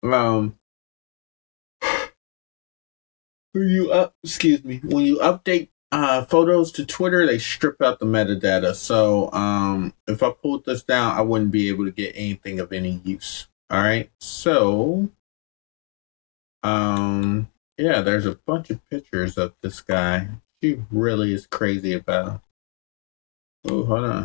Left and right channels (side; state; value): right; quieter; 36.9 dB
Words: um when you update photos to Twitter, they strip out the metadata. So if I pulled this down, I wouldn't be able to get anything of any use. All right, so um yeah, there's a bunch of pictures of this guy. She really is crazy about him. Oh, hold